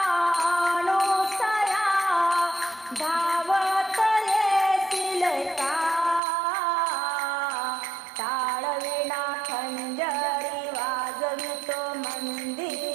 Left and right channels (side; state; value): left; drops out; at 6.2 s